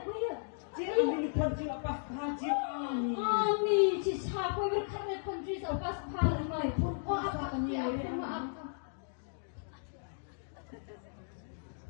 kepia. Jika ni pun jika pas haji ami. Ami, cisha, kue berkarya country so pas pahal mai. Oh, apa kan ya? Maaf.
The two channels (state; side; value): silent; right; digital silence